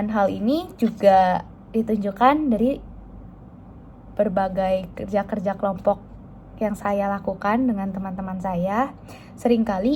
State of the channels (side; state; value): both; identical; correlation 1.00